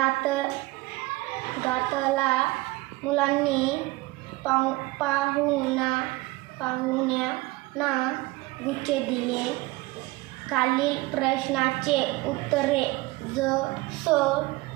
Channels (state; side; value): quieter; left; 21.3 dB